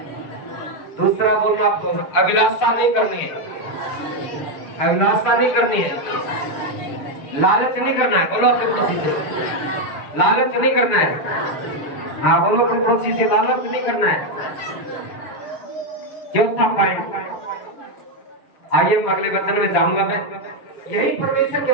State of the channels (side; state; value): right; late; 6.6 ms